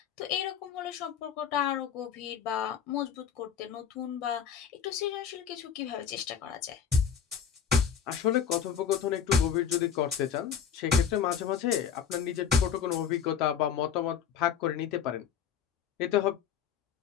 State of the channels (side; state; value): right; quieter; 7.8 dB